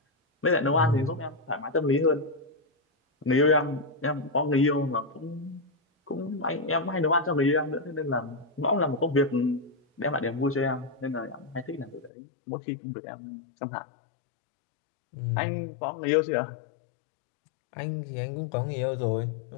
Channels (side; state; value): right; drops out; at 12.1 s